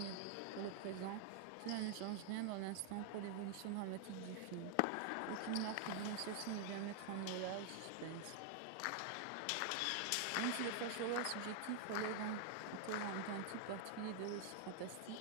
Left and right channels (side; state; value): both; different; correlation 0.00